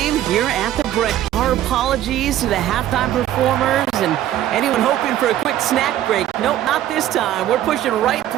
here at the break. Our apologies to the halftime performers and anyone hoping for a quick snack break. Nope, not this time. We're pushing right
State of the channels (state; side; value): quieter; left; 12.5 dB